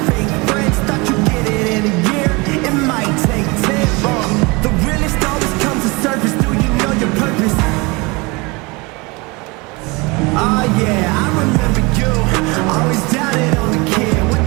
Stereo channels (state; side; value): quieter; left; 26.3 dB